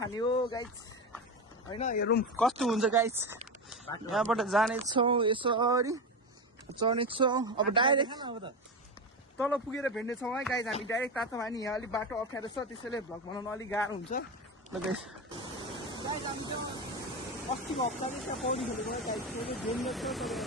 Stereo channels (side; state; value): both; normal; correlation 0.18